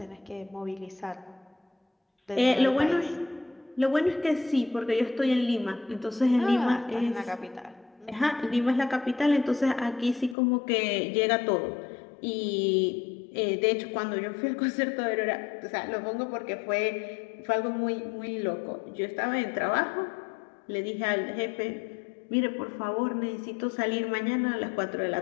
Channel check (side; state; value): right; drops out; at 10.4 s